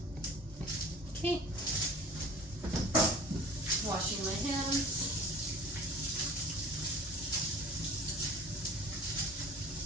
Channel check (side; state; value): both; normal; correlation 0.42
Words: Okay. Washing my hands.